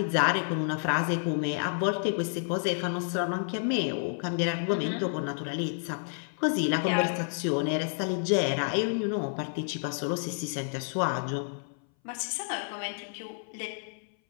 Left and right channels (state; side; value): silent; right; 58 dB below the other